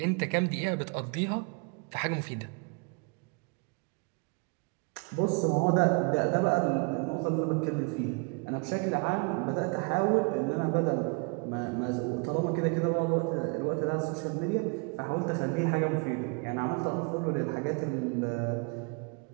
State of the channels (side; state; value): left; quieter; 33.1 dB